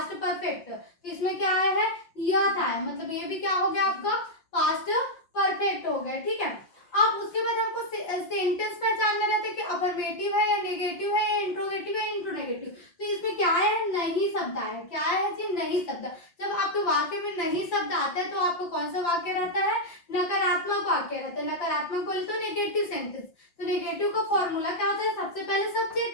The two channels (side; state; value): right; late; 5.6 ms